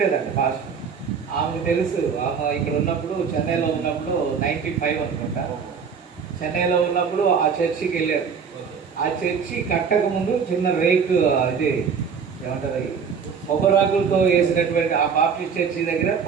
పాస్టర్. ఆమెకు తెలుసు, ఆమె ఇక్కడ ఉన్నప్పుడు చెన్నైలో ఉన్నప్పుడు 95 అనుకుంటా, చెన్నైలో ఉన్నప్పుడు ఆ చర్చికి వెళ్ళారు. ఆ చర్చి కట్టక ముందు చిన్న రేకు, ఇది ఏమంటారు, కొబ్బరాకులతో వేసినటువంటి ఆ బాప్టిస్ట్ చర్చి దగ్గర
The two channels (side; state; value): left; quieter; 6.3 dB